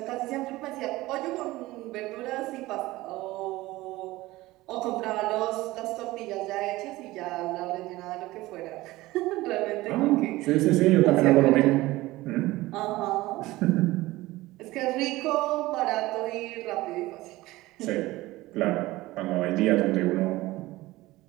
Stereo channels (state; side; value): quieter; left; 18.6 dB